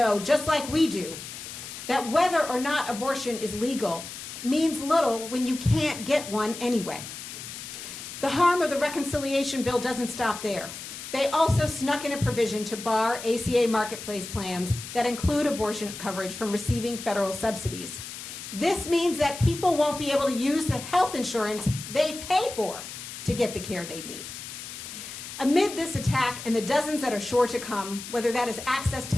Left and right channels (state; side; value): noise; left; hiss, 10 dB below the sound